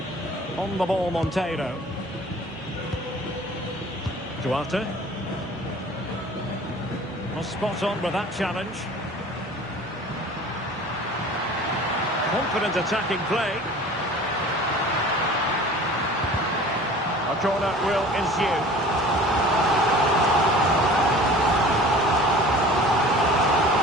On the ball, Monteiro. Duarte. Well, spot on with that challenge. Confident attacking play. A corner will ensue.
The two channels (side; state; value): both; normal; correlation 0.44